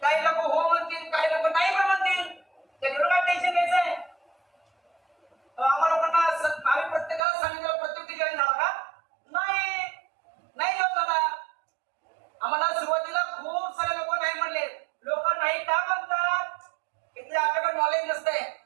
हो म्हणतील काही लोक नाही पण म्हणतील त्याच्यावर काय टेन्शन घ्यायचंय आम्हाला लोकांना आम्ही प्रत्येकाला सांगितलं प्रत्येक जॉईन झाला का नाही जॉईन झाला आम्हाला सुरुवातीला खूप सारे लोक नाही म्हणले लोक नाही का म्हणतात इथे आपल्याकडे नॉलेज नसतंय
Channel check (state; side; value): drops out; left; at 7.2 s